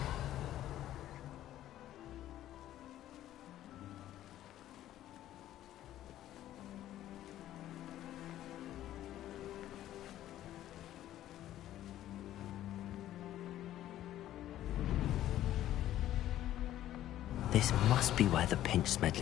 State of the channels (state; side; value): quieter; right; 13.0 dB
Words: This must be where the Pinch